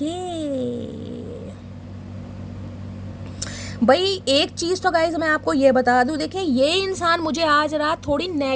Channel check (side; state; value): both; identical; correlation 1.00